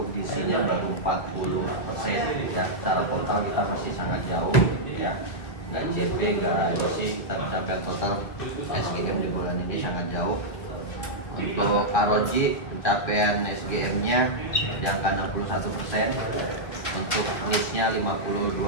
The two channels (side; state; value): right; late; 2.0 ms